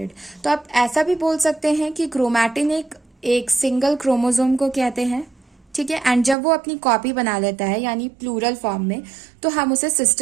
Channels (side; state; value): left; drops out; at 6.4 s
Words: तो आप ऐसा भी बोल सकते हैं कि क्रोमैटिन एक सिंगल क्रोमोसोम को कहते हैं, ठीक है। एंड जब वो अपनी कॉपी बना लेता है यानी प्लूरल फॉर्म में, तो हम उसे